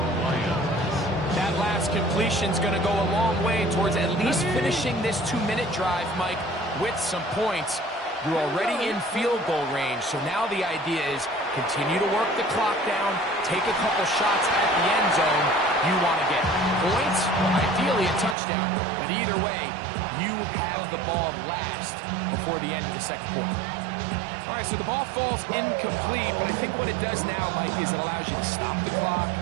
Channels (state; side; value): drops out; left; at 18.4 s